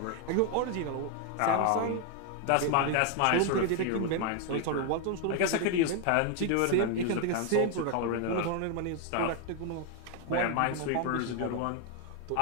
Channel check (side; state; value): both; different; correlation 0.01